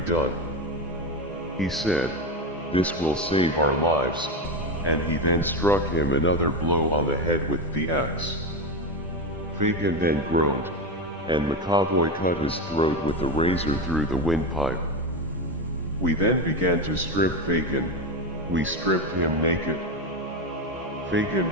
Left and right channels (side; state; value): both; normal; correlation 0.15